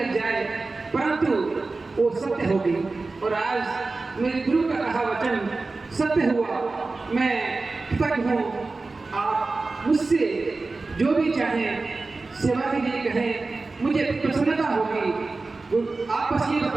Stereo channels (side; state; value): left; quieter; 3.6 dB